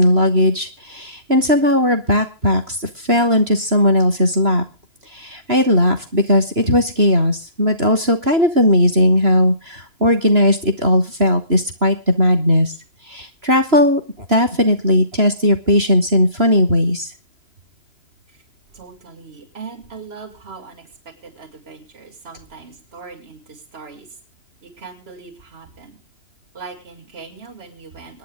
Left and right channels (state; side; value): late; left; 3.0 ms